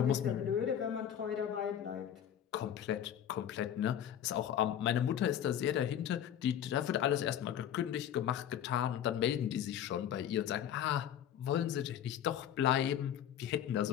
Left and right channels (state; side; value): quieter; right; 9.9 dB